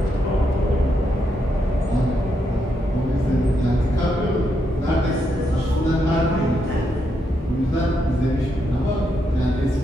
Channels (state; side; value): normal; both; correlation 0.80